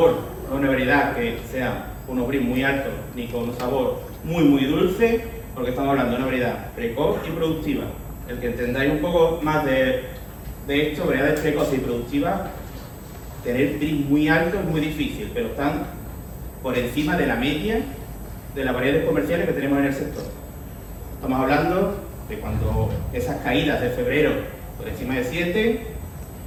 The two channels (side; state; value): both; identical; correlation 1.00